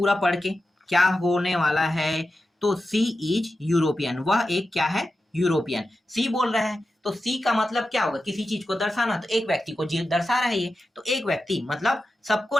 पढ़ के क्या होने वाला है। तो सी इज यूरोपियन, वह एक क्या है, यूरोपियन। सी बोल रहा है, तो सी का मतलब क्या होगा, किसी चीज को दर्शाना, तो एक व्यक्ति को दर्शा रहा है ये, तो एक व्यक्ति मतलब सबको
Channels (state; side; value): normal; both; correlation 0.91